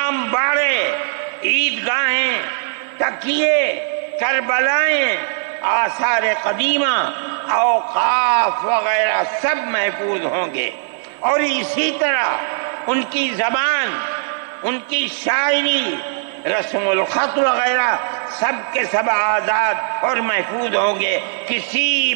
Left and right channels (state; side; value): silent; left; 55 dB below the other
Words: باڑے، عیدگاہیں، تکیے، کربلائیں، آثار قدیمہ، اوقاف وغیرہ سب محفوظ ہوں گے، اور اسی طرح ان کی زبان، ان کی شاعری، رسم الخط وغیرہ سب کے سب آزاد اور محفوظ ہوں گے، کسی